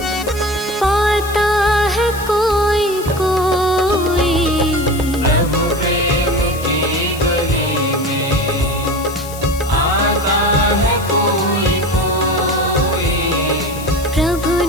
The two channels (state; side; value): noise; left; hiss, 14 dB below the sound